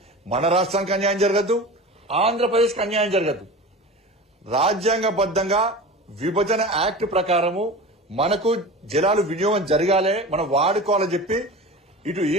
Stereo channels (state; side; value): normal; both; correlation 0.32